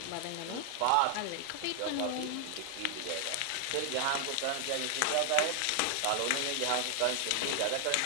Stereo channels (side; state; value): both; different; correlation 0.00